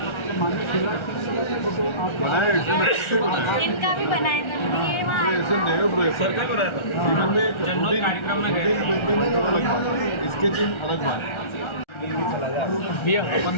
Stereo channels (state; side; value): late; right; 1.3 ms